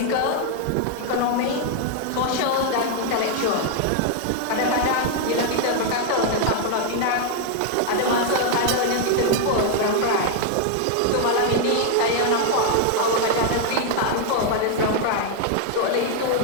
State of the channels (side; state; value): both; different; correlation 0.00